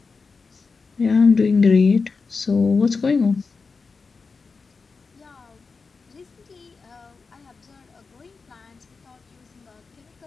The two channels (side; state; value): right; quieter; 4.6 dB